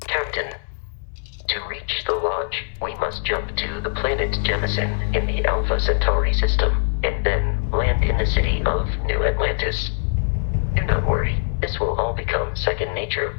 Captain, to reach the Lodge, we must jump to the planet Jemison in the Alpha Centauri system, and then land in the city of New Atlantis. Do not worry, this will all become second nature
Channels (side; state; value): right; silent; digital silence